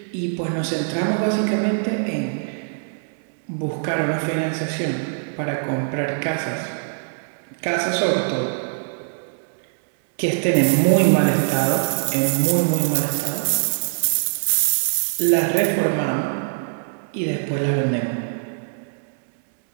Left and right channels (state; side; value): silent; left; 64 dB below the other